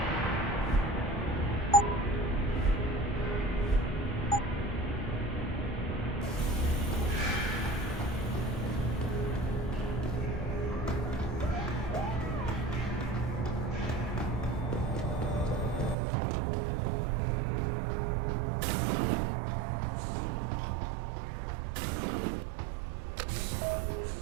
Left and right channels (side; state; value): left; drops out; at 16.0 s